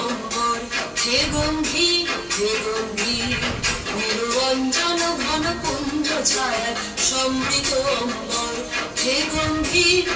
অম্বর হে গম্ভীর হে গম্ভীর নিরঞ্জন ঘন পুঞ্জ ছায়ায় সমৃত অম্বর হে গম্ভীর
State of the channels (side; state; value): both; identical; correlation 1.00